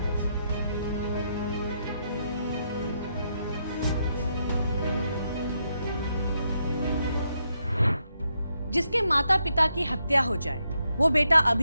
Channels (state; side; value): inverted; both; correlation -0.80